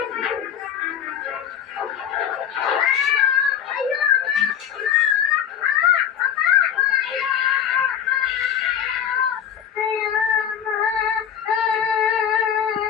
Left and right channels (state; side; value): quieter; right; 9.0 dB